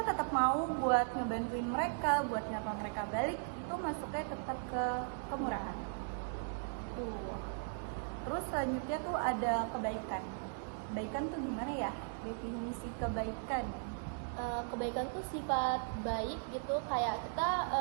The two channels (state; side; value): silent; left; digital silence